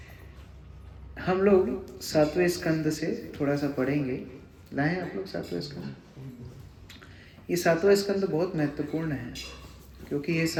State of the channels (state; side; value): identical; both; correlation 1.00